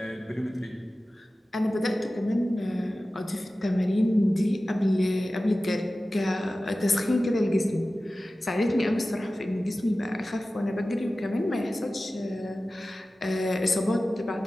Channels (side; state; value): both; normal; correlation 0.96